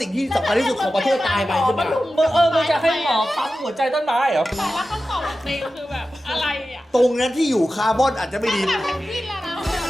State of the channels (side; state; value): both; normal; correlation 0.94